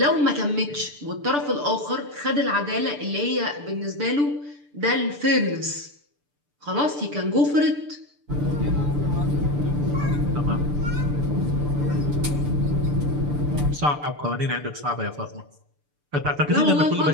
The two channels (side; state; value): left; late; 6.8 ms